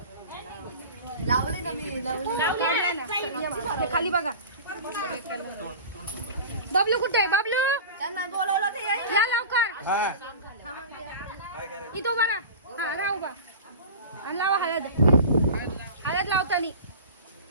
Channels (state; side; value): inverted; both; correlation -0.35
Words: लावले ना मी लावले खाली बघा बबलू कुठे आहे बबलू त्यांना बोलवलं ते या लवकर इथं उभा राहा हा राहा उभा आणि लावा हळद हळद लावतानी